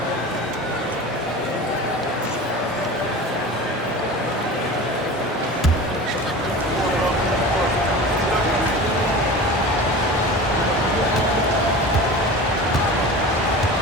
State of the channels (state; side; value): normal; both; correlation 0.34